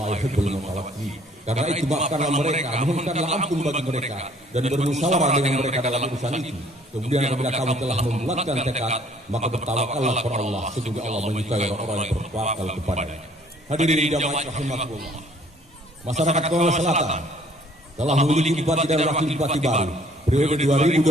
yuhibbul mutawakkilin. Karena itu maafkanlah mereka, mohonkanlah ampun bagi mereka dan bermusyawarah dengan mereka dalam urusan itu. Kemudian apabila kamu telah membulatkan tekad, maka bertawakallah kepada Allah. Sesungguhnya Allah menyukai orang-orang yang bertawakal kepadanya. Hadirin jamaah rahimakumullah. Masyarakat Konawe Selatan telah memiliki bupati dan wakil bupati baru periode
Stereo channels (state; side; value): normal; both; correlation 0.59